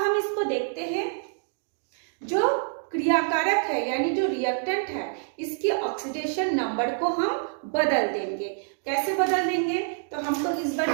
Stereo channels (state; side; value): silent; left; digital silence